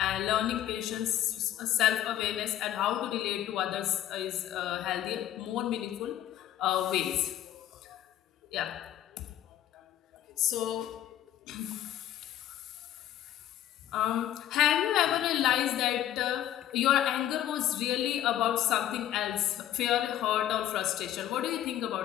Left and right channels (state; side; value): quieter; right; 12.1 dB